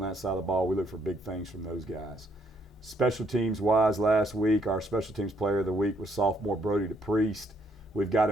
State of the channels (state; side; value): normal; both; correlation 0.70